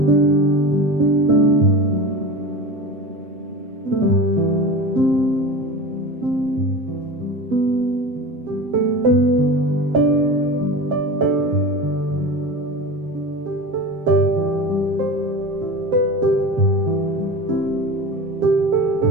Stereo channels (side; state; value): left; late; 7.6 ms